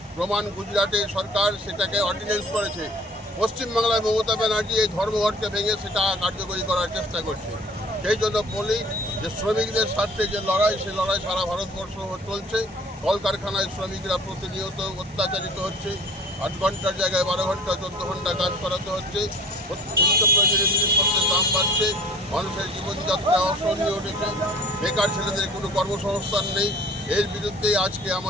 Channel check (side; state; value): both; normal; correlation 0.48